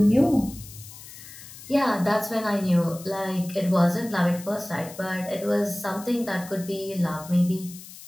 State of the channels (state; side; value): noise; left; hiss, 16 dB below the sound